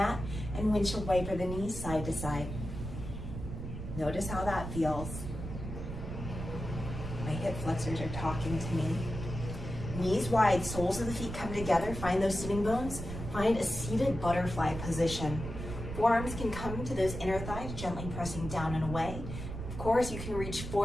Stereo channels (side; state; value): right; noise; rumble, 7 dB below the sound